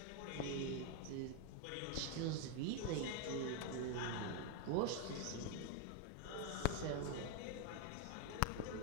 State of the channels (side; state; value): both; different; correlation 0.01